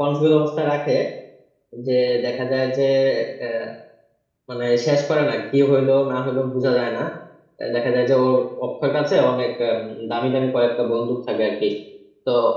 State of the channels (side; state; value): both; identical; correlation 1.00